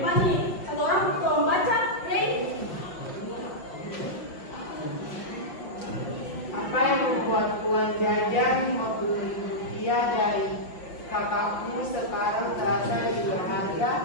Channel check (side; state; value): right; late; 5.6 ms